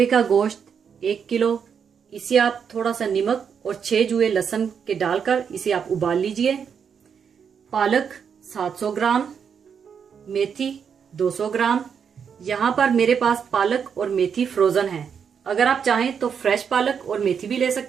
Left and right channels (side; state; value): left; quieter; 7.0 dB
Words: का गोश्त 1 किलो, इसे आप थोड़ा सा नमक और 6 जुए लहसुन के डालकर इसे आप उबाल लीजिए। पालक 700 ग्राम, मेथी 200 ग्राम। यहाँ पर मेरे पास पालक और मेथी फ्रोजन है। अगर आप चाहें तो फ्रेश पालक और मेथी भी ले